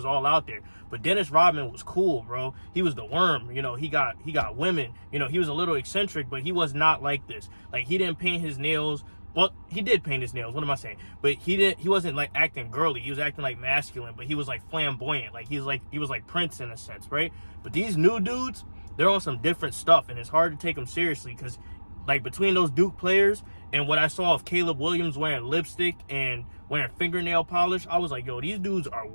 all out there. But Dennis Rodman was cool, bro. He was the worm. He got women. He was a little eccentric, but he was not like this. Like, he didn't paint his nails. Well, he did paint his nails. What am I saying? But he wasn't like acting girly. He was acting like masculine, but he was like flamboyant. Like he was like Prince in a sense, right? But these new dudes, they're on some different stuff, and it's hard to take them seriously because, like, between those Duke players and what I saw of Caleb Williams wearing lipstick and wearing fingernail polish, I was like, yo, these dudes are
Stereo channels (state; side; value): inverted; both; correlation -1.00